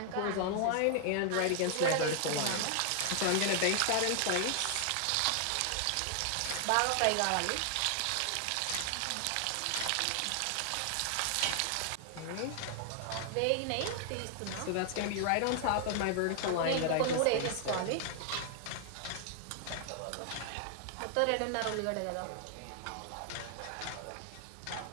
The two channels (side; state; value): both; different; correlation 0.00